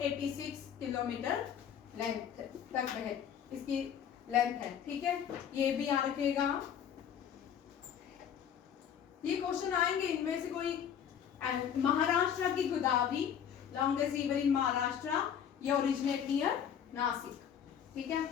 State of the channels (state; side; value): quieter; right; 8.6 dB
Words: किलोमीटर लेंथ तक बह, इसकी लेंथ है, ठीक है। ये भी याद रखिएगा। ये क्वेश्चन आएंगे, इनमें से कोई। महाराष्ट्र की Godavari, longest river in Maharashtra, ये ओरिजिनेट नियर नासिक, ठीक है।